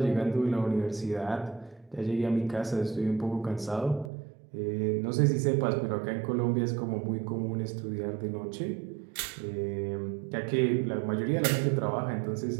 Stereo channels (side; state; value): left; drops out; at 4.1 s